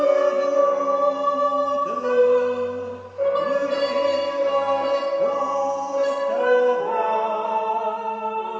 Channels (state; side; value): identical; both; correlation 1.00